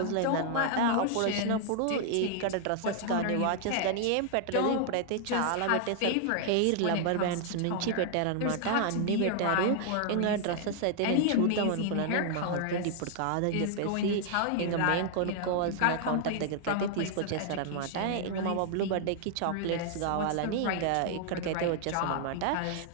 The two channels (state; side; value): different; both; correlation 0.00